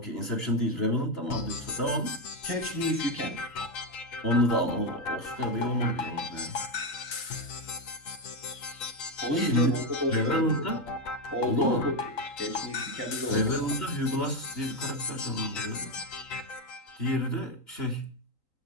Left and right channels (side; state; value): right; late; 3.9 ms